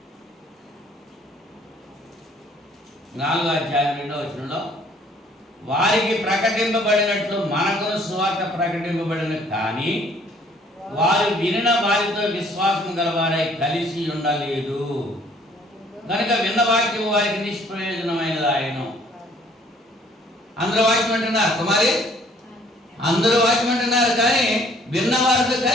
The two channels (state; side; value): normal; both; correlation 0.59